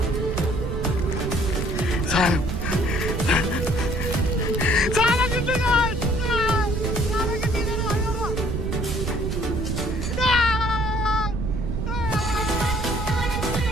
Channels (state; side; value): noise; right; rumble, 2 dB below the sound